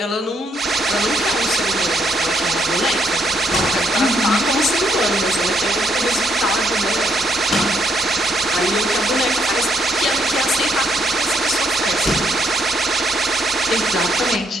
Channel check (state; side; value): normal; both; correlation 0.73